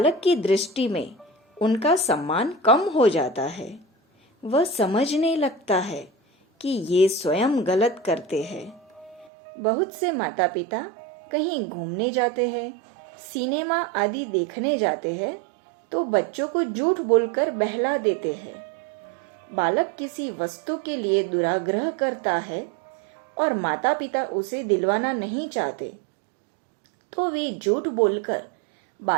की दृष्टि में उनका सम्मान कम हो जाता है। वह समझने लगता है कि ये स्वयं गलत करते हैं। बहुत से माता पिता कहीं घूमने जाते हैं, सिनेमा आदि देखने जाते हैं तो बच्चों को झूठ बोलकर बहला देते हैं। बालक किसी वस्तु के लिए दुराग्रह करता है और माता पिता उसे दिलवाना नहीं चाहते तो वे झूठ बोलकर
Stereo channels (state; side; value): drops out; left; at 9.3 s